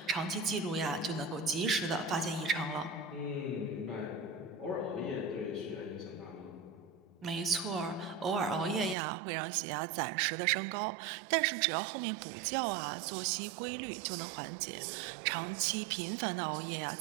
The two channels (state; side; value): drops out; left; at 9.0 s